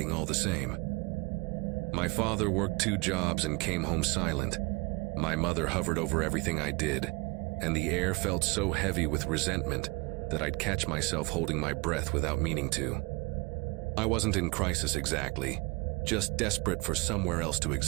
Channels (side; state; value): left; quieter; 26.8 dB